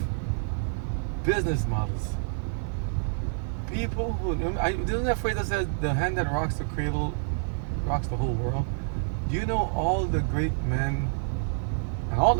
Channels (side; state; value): left; silent; digital silence